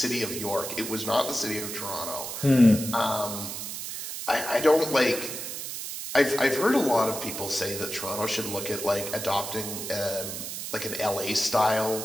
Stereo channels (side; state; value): right; noise; hiss, 6 dB below the sound